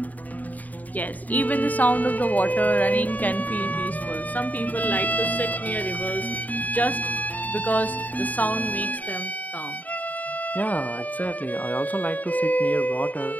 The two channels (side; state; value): right; late; 0.077 ms